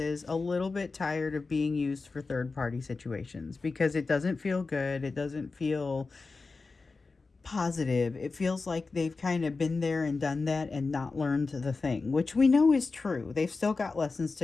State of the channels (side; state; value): right; quieter; 4.0 dB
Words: is, a little bit tired of being used for third party situations, because it doesn't feel good. It doesn't feel positive. It feels like they've kind of been there and done that and not learned the thing, which we know is true. They've still got lessons